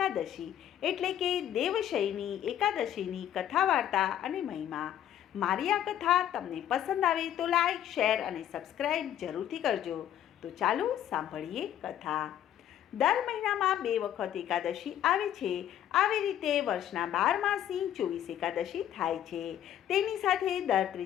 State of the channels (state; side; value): quieter; right; 10.9 dB